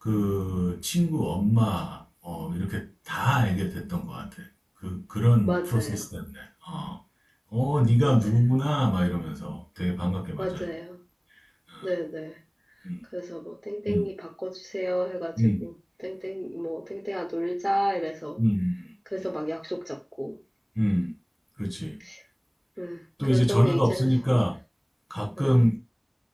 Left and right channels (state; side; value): identical; both; correlation 1.00